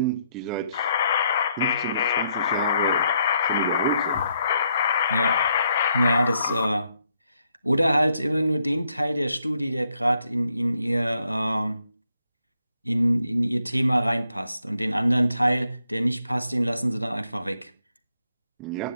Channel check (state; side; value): inverted; both; correlation -0.76